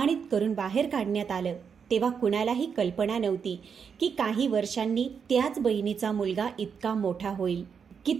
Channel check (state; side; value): quieter; left; 6.6 dB